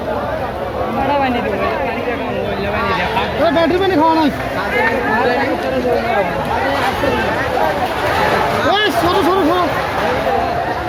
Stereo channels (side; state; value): both; identical; correlation 1.00